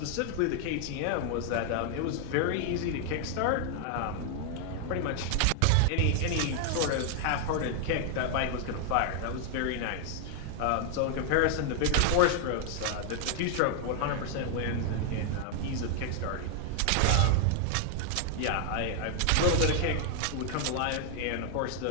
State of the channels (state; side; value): different; both; correlation 0.00